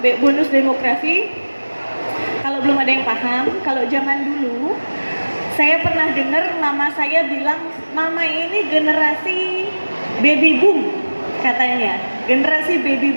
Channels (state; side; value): inverted; both; correlation -1.00